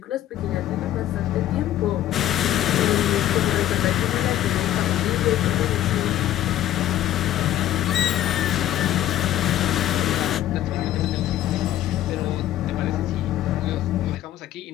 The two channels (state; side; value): quieter; right; 12.8 dB